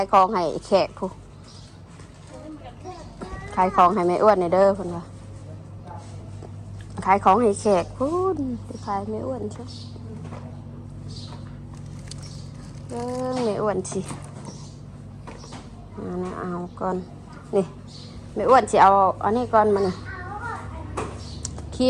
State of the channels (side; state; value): both; identical; correlation 1.00